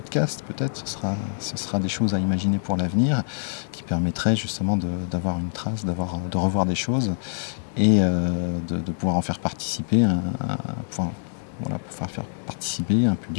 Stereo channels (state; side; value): silent; right; digital silence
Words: peut-être. Ce sera des choses à imaginer pour l'avenir qui permettraient justement d'avoir une trace, de revoir des choses et de pouvoir en faire participer pour faire participer un